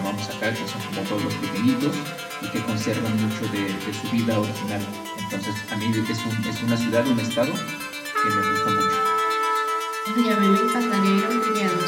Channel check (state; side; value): identical; both; correlation 1.00